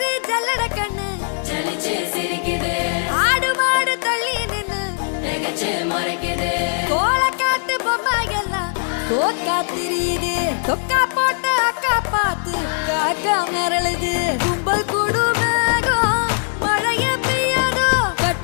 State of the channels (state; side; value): silent; right; digital silence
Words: ஜல்லட கண்ணு ஆடு மாடு தள்ளி நின்னு கோலக்காட்டு பொம்மை எல்லாம் தோக்கா திரியுது தொக்கா போட்ட அக்கா பார்த்து காக்கா மிரளுது கும்பல் கூடு